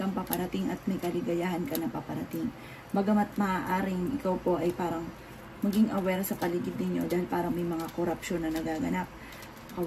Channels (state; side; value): identical; both; correlation 1.00